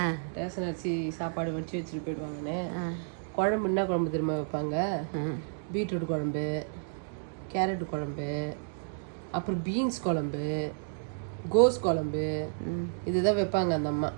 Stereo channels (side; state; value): left; silent; digital silence